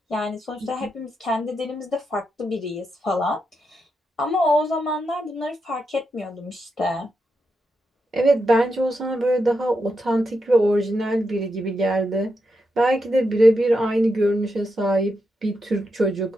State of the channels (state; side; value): normal; both; correlation 0.85